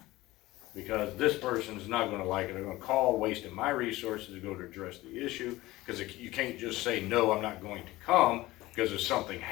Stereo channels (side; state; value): right; quieter; 18.5 dB